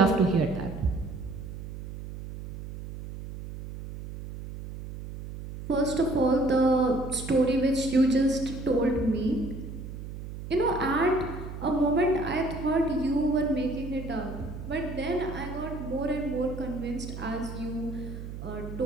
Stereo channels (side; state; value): right; noise; hum, 10 dB below the sound